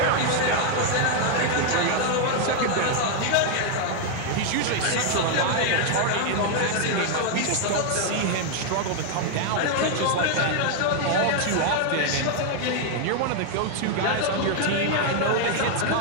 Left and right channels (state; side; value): different; both; correlation 0.00